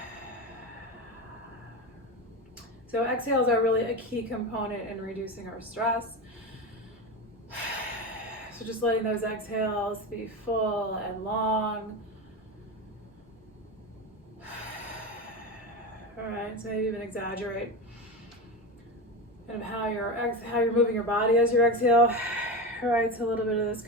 So exhales are really a key component in reducing our stress. So just letting those exhales be full and long. All right, so maybe even exaggerate kind of how you're moving your body as you exhale. All right, so a little bit of this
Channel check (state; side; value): normal; both; correlation 0.21